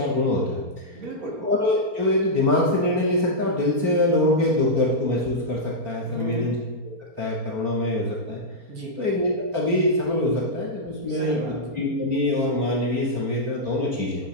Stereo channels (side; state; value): left; late; 4.3 ms